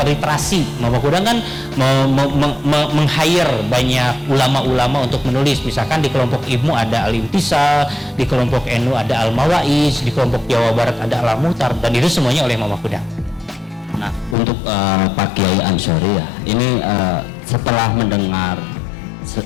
Mama Kudang kan meng-hire banyak ulama-ulama untuk menulis. Misalkan di kelompok Ibnu ada Al-Imtisal, di kelompok NU ada Al-Mawaiz, di kelompok Jawa Barat ada Al-Muhtar, dan itu semuanya oleh Mama Kudang. Nah, untuk Pak Kiai Ansori ya, ini setelah mendengar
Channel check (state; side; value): drops out; right; at 14.4 s